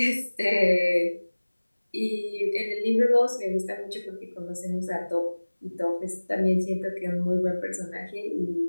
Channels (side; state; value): both; inverted; correlation -1.00